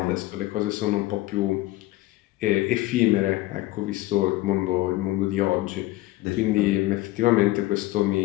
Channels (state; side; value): quieter; right; 17.8 dB